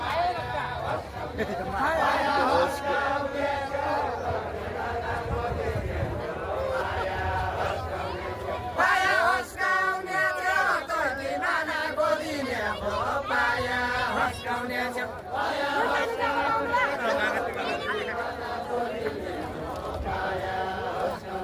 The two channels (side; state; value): both; identical; correlation 1.00